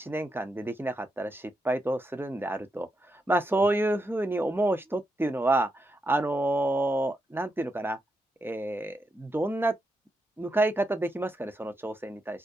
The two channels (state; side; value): normal; both; correlation 0.84